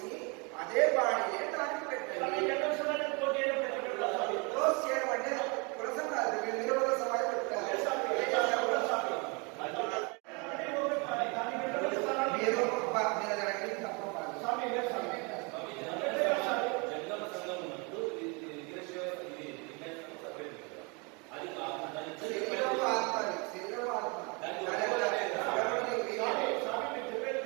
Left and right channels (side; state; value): left; quieter; 31.1 dB